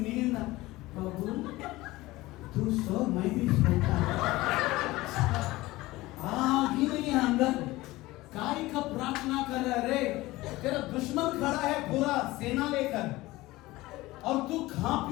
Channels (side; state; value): right; quieter; 19.1 dB